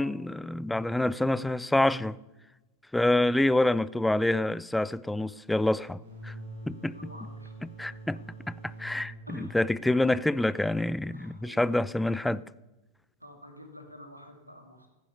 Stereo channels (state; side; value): normal; both; correlation 0.96